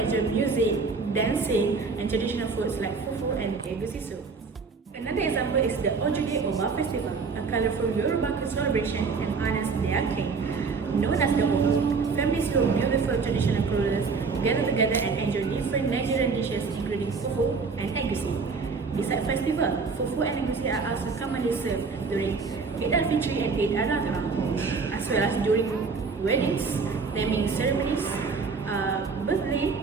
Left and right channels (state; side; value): quieter; left; 4.8 dB